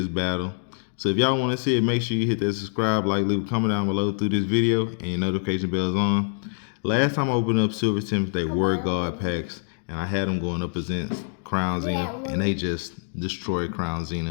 battle. So if y'all want to see it, make sure you hit that subscribe, like, leave a comment down below through this video, and your notification bell's on. Last time I opened up Silver Tempest, they were God packs, and I had them going up against Crown Zenith, and they just destroyed Crown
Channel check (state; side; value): silent; right; digital silence